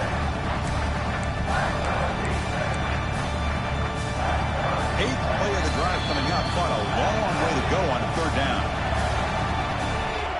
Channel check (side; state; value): both; identical; correlation 1.00